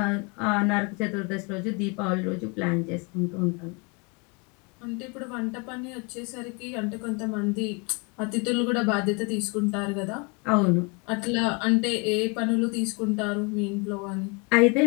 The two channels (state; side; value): quieter; right; 30.3 dB